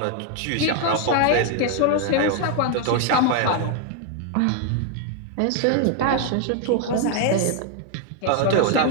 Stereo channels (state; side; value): different; both; correlation 0.00